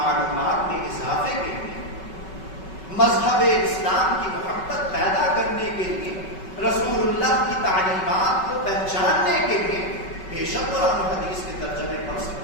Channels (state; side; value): late; right; 5.3 ms